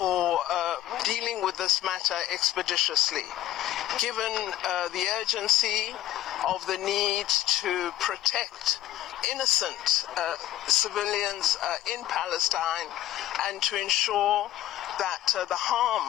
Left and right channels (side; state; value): right; quieter; 14.0 dB